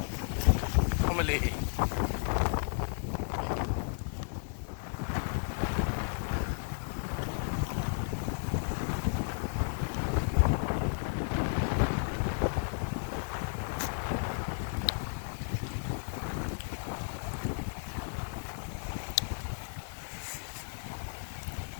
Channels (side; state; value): right; silent; digital silence